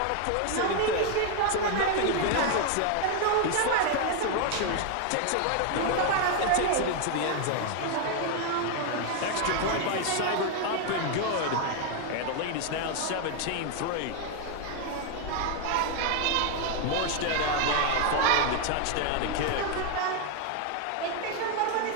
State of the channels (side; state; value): both; different; correlation 0.01